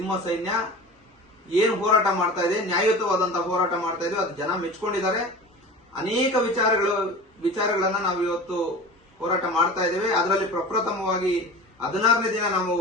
ಸೈನ್ಯ ಏನು ಹೋರಾಟ ಮಾಡ್ತಾ ಇದೆ, ನ್ಯಾಯಯುತವಾದಂತಹ ಹೋರಾಟ ಮಾಡ್ತಾ ಇದೆ, ಅದು ಜನ ಮೆಚ್ಕೊಂಡಿದ್ದಾರೆ. ಅನೇಕ ವಿಚಾರಗಳನ್ನ ನಾವು ಇವತ್ತು ಹೋರಾಟ ಮಾಡ್ತಾ ಇದ್ದೇವೆ. ಅದರಲ್ಲಿ ಪ್ರಪ್ರಥಮವಾಗಿ 16ನೇ ದಿನ ನಾವು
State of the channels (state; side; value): normal; both; correlation 0.35